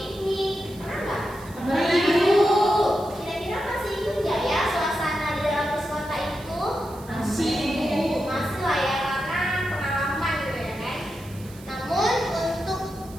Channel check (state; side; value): noise; right; hiss, 21 dB below the sound